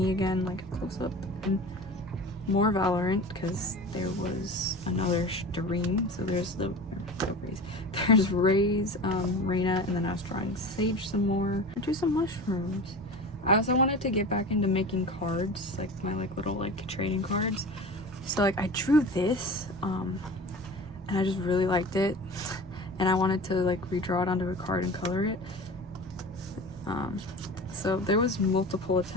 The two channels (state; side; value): normal; both; correlation 0.34